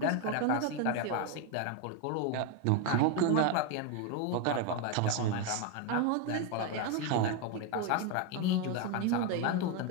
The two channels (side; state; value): both; different; correlation 0.02